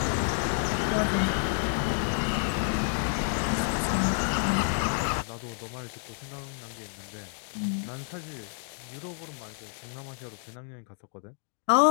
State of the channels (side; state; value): right; silent; digital silence